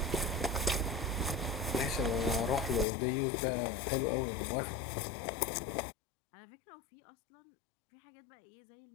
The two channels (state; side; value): drops out; right; at 2.9 s